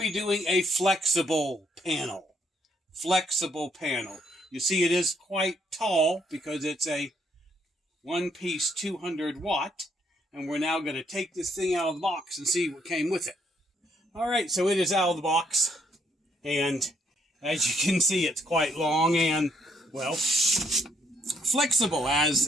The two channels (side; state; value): both; normal; correlation 0.71